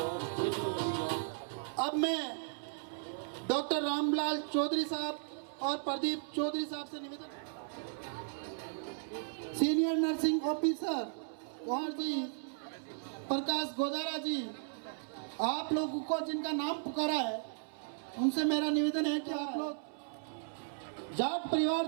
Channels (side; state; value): left; silent; 54 dB below the other